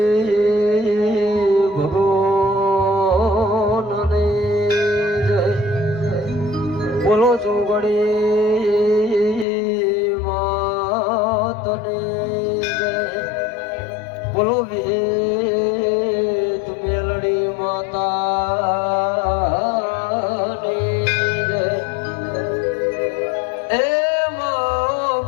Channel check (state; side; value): drops out; right; at 9.5 s